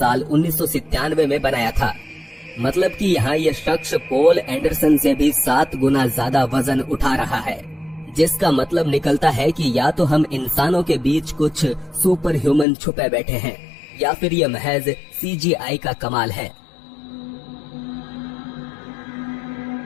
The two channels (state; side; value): drops out; right; at 12.7 s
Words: 1997 में बनाया था। मतलब कि यहाँ ये शख्स पॉल एंडरसन से भी 7 गुना ज्यादा वजन उठा रहा है, जिसका मतलब निकलता है कि या तो हम इंसानों के बीच कुछ सुपर ह्यूमन छुपे बैठे हैं या फिर ये महज CGI का कमाल है।